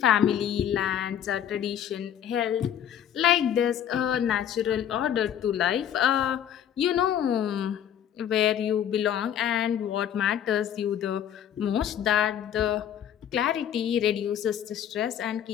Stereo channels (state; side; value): quieter; right; 9.7 dB